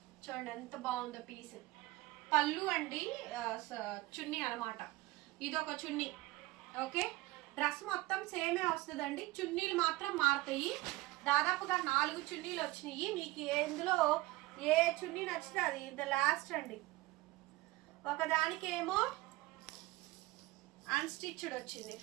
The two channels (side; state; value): left; quieter; 19.5 dB